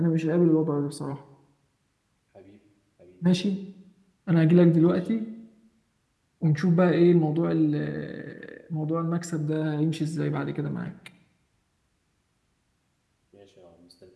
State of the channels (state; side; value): identical; both; correlation 1.00